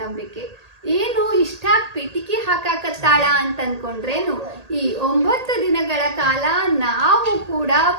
ನಂಬಿಕೆ. ಏನು ಇಷ್ಟಾಗಿ ಪಿಟಿಕಿ ಹಾಕಾಕತ್ತಾಳ ಅಂತ ಅನ್ಕೊಂಡ್ರೇನು, ಈ 9 ದಿನಗಳ ಕಾಲ ನಾವು ಕೂಡ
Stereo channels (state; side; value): late; left; 1.8 ms